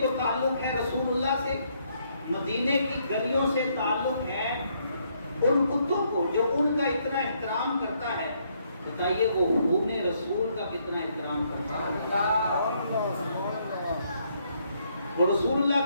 تعلق ہے رسول اللہ سے، مدینے کی گلیوں سے تعلق ہے، ان کتوں کو جو ان کا اتنا احترام کرتا ہے، بتائیے وہ خون رسول کا کتنا احترام کرتا ہے، وہ رسول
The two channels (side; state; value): both; inverted; correlation -0.72